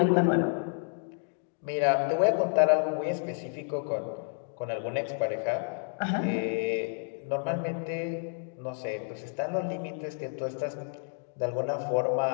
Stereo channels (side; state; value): right; silent; 58 dB below the other